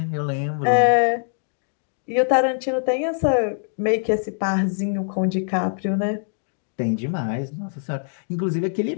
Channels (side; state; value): right; silent; digital silence